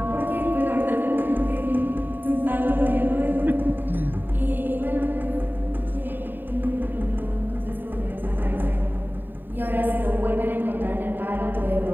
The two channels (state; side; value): late; left; 0.092 ms